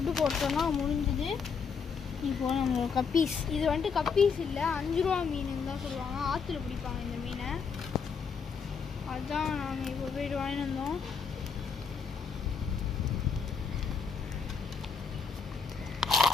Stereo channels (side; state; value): right; quieter; 5.8 dB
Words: போட்டோன்னா முடிஞ்சுது. இப்போது நம்ம கப்பீஸ், இது வந்துட்டு கப்பீஸ் இல்லை, 5 ரூபா மீனுன்னு தான் சொல்லுவாங்க. ஆற்றுல பிடிப்பாங்க இந்த மீனை. அதுதான் நாங்கள் இப்போ போய்ட்டு வாங்கிட்டு வந்தோம்.